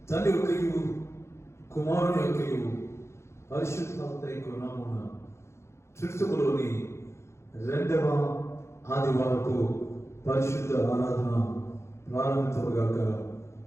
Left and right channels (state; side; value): late; right; 0.13 ms